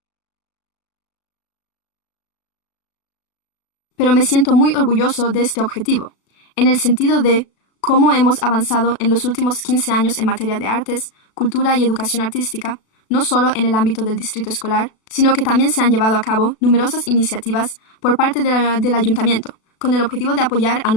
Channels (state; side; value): late; right; 36 ms